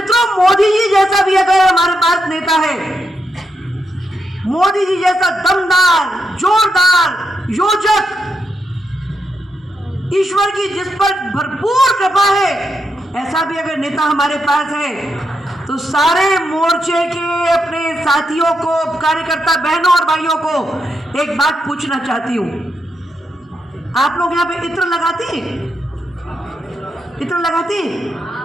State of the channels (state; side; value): normal; both; correlation 0.82